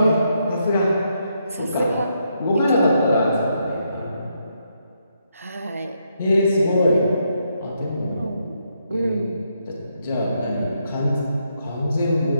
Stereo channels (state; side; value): inverted; both; correlation -0.79